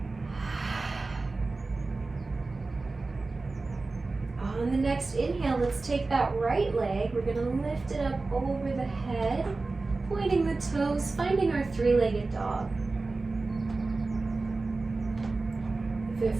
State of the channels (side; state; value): left; quieter; 3.6 dB